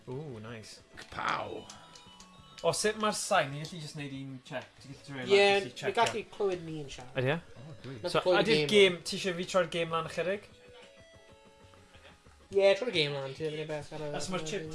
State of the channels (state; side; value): identical; both; correlation 1.00